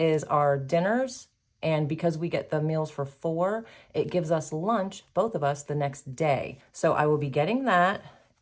our dinners. And because we get the meals for 4, it gives us lunch, both of us, the next day. So I will be getting that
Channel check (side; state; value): both; identical; correlation 1.00